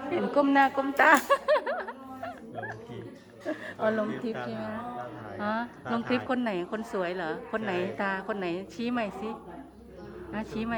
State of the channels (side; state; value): both; identical; correlation 1.00